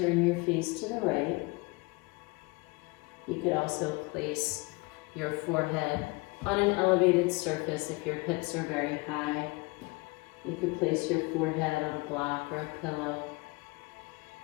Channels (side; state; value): right; quieter; 25.7 dB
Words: your face to the right. You could also place your forehead on an elevated surface if your hips are very high. You could place your forehead on a block or a pillow.